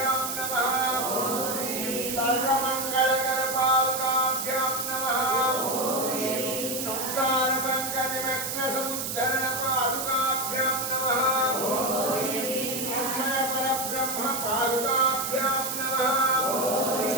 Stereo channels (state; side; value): noise; right; hiss, 3 dB below the sound